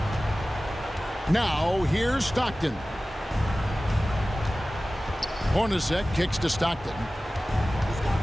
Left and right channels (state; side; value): normal; both; correlation 0.97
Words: Now, here's Stockton. Hornacek kicks to Stockton.